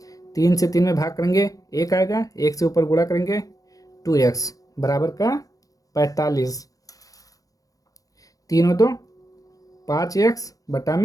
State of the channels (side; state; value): right; late; 0.17 ms